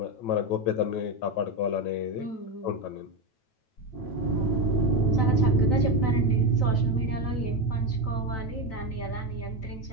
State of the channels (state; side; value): late; right; 9.1 ms